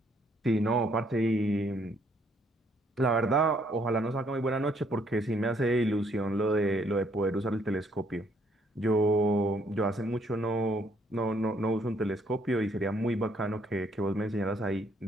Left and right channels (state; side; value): normal; both; correlation 0.68